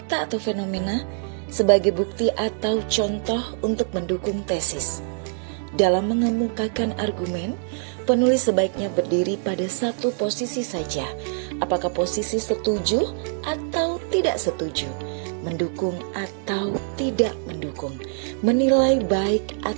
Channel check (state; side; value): silent; left; 63 dB below the other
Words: atau fenomena sebagai bukti atau contoh untuk mendukung tesis. Dalam mengemukakan argumen, penulis sebaiknya berdiri pada satu posisi saja, apakah posisi setuju atau tidak setuju, mendukung atau tidak mendukung, menilai baik